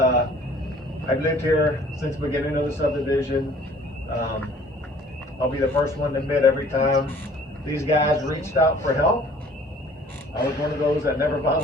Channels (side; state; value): both; normal; correlation 0.53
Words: I've lived here since the beginning of the subdivision. I'll be the first one to admit, every time these guys reached out for help, I was one of those that never